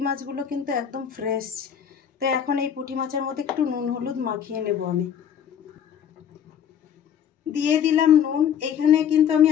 মাছগুলো কিন্তু একদম ফ্রেশ। তো এখন এই পুঁটি মাছের মধ্যে একটু নুন হলুদ মাখিয়ে নেব। আমি দিয়ে দিলাম নুন। এখানে কিন্তু আমি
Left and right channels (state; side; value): quieter; right; 8.6 dB